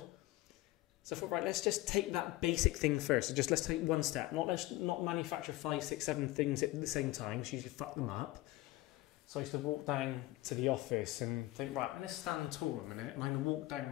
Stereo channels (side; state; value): right; quieter; 18.1 dB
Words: So I thought, right, let's just take that basic thing first. So let's take one step. Let's not manufacture 5, 6, 7 things at the same time. So you usually fuck them up. So I used to walk down to the office and think, right, I'm going to stand tall a minute. And I'm going to walk down